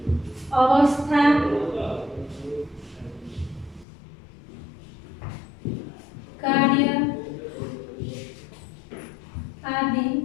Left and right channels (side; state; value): right; drops out; at 3.9 s